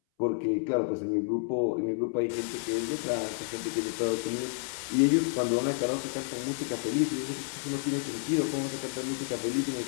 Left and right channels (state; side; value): silent; right; 58 dB below the other